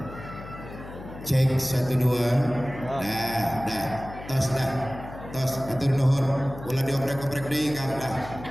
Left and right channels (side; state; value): left; noise; hum, 13 dB below the sound